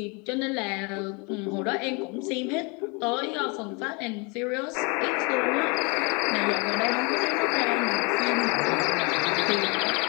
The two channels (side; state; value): right; quieter; 31.3 dB